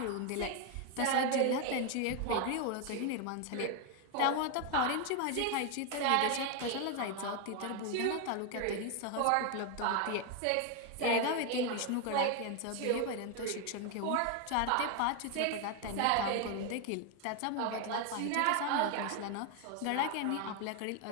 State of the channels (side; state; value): both; different; correlation 0.01